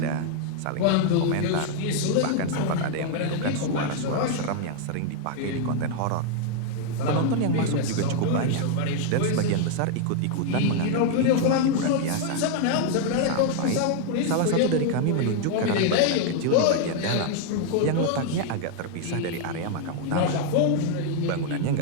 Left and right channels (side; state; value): both; different; correlation 0.00